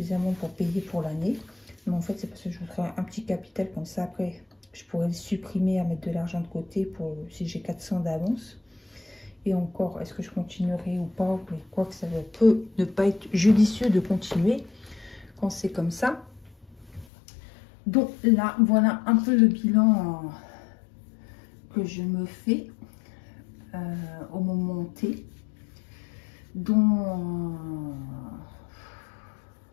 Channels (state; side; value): drops out; right; at 17.1 s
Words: pour payer pour l'année. Mais en fait, c'est parce que je voudrais un petit capital comme ça. Après, je pourrais le supprimer à mettre de l'argent de côté pour si j'ai 400 d'avance. Et encore, est-ce que je continuerai ou pas? Mais quoi que ça peut ne pas être judicieux de continuer quand c'est comme ça. Donc là, voilà un peu le bilan que je me fais au moment T. Donc,